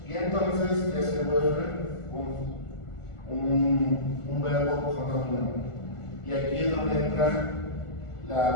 Y entonces ya se vuelve un verbo pronomino. Y aquí es donde entra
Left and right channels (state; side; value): late; right; 1.4 ms